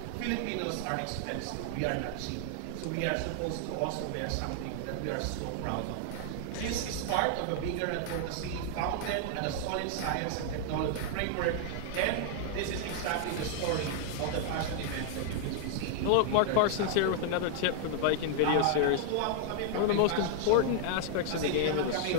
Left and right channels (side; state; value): both; different; correlation 0.00